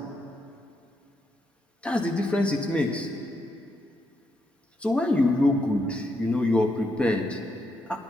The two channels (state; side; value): normal; both; correlation 0.80